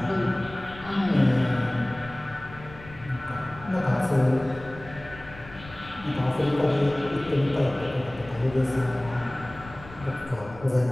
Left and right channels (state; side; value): noise; left; rumble, 17 dB below the sound